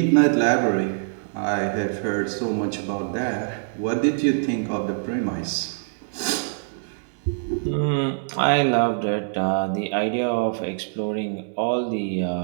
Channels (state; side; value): silent; left; digital silence